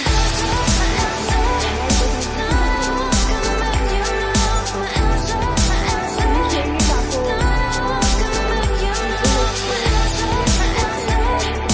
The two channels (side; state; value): both; identical; correlation 1.00